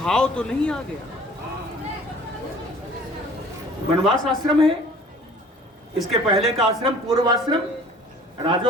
तो नहीं आ गया। वनवास आश्रम है, इसके पहले का आश्रम पूर्व आश्रम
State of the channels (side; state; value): both; normal; correlation 0.49